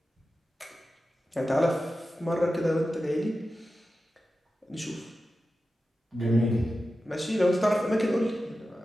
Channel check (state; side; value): normal; both; correlation 0.93